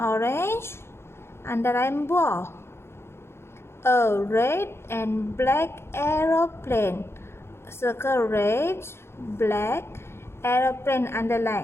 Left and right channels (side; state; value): right; late; 0.12 ms